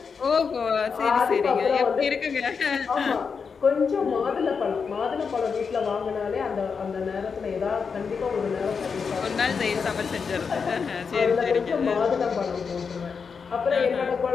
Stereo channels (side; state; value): right; quieter; 5.7 dB